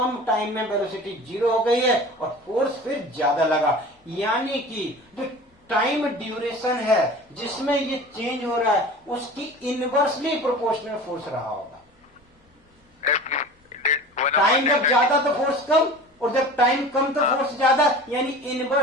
टाइम में वेलोसिटी 0 हो गई है और फोर्स फिर ज्यादा लगा। यानी कि जो टाइम ड्यूरेशन है जिसमें ये चेंज हो रहा है उसकी इनवर्सली प्रोपोर्शनल फोर्स रहा होगा। टाइम जब ज्यादा तो फोर्स कम, और जब टाइम कम तो फोर्स ज्यादा, यानी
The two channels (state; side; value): normal; both; correlation 0.38